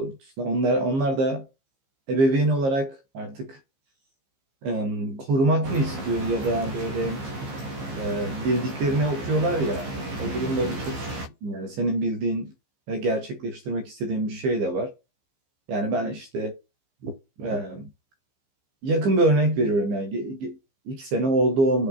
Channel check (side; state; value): left; late; 15 ms